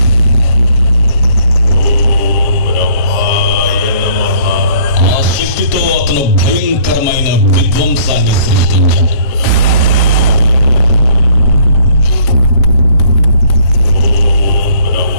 ఆ శక్తితో అతను భయంకరమైన విధ్వంసాన్ని సృష్టించాడు.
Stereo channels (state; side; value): late; right; 7.4 ms